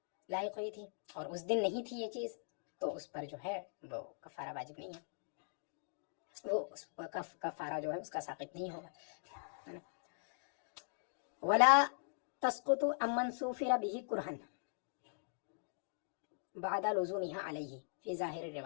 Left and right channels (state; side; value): silent; right; digital silence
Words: لاحق ہوئی تھی اور اس دن نہیں تھی یہ چیز تو اس پر جو ہے وہ کفارہ واجب نہیں ہے، وہ اس کفارہ جو ہے اس کا ساقط نہیں ہوگا۔ ولا تسقط عمن سوفر به کرہن بعد لزومها علیہ فی ظاہر